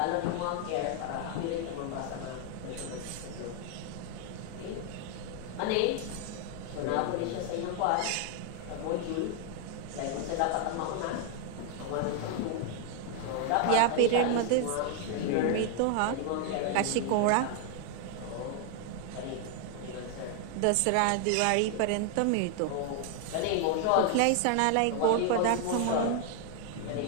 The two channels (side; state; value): both; different; correlation 0.00